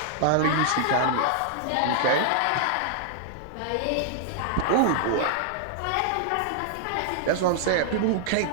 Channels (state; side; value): different; both; correlation -0.01